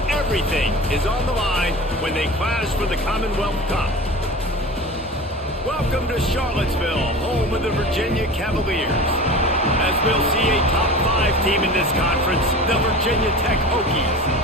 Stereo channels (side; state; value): both; normal; correlation 0.35